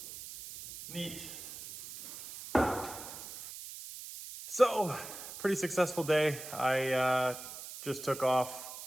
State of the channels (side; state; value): right; noise; hiss, 11 dB below the sound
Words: Neat. So, pretty successful day. I just took off